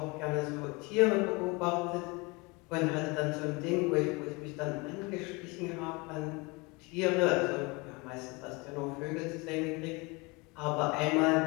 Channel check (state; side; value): quieter; right; 26.7 dB